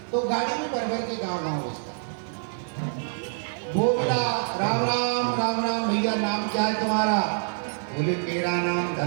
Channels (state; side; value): silent; left; 61 dB below the other